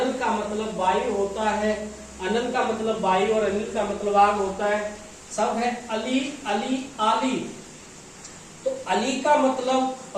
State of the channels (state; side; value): identical; both; correlation 1.00